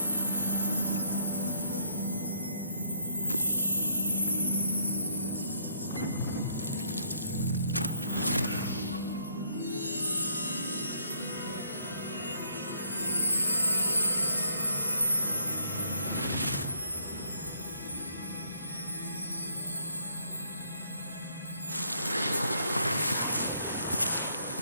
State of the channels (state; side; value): inverted; both; correlation -0.67